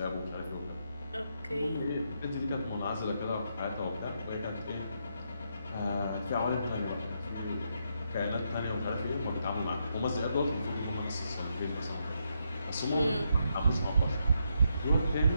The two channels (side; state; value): both; inverted; correlation -0.80